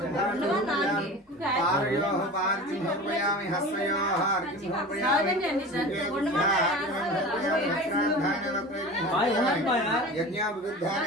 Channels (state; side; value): normal; both; correlation 0.34